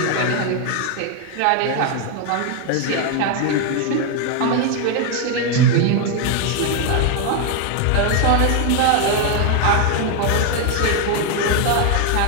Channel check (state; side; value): different; both; correlation 0.01